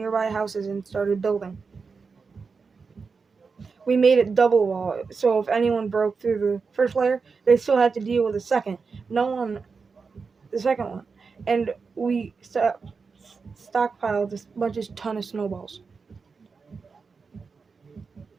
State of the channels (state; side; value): quieter; left; 5.0 dB